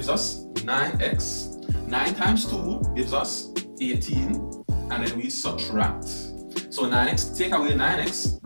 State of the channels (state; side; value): inverted; both; correlation -1.00